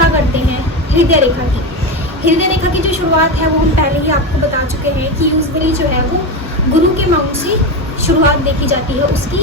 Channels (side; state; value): both; normal; correlation 0.17